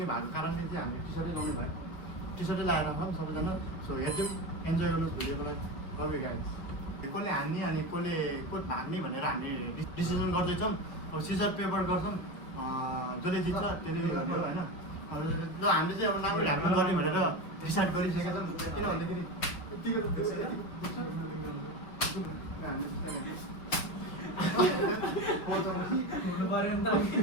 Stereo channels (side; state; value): right; late; 6.1 ms